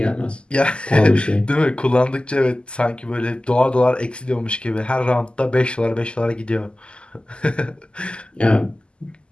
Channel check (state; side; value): late; right; 0.051 ms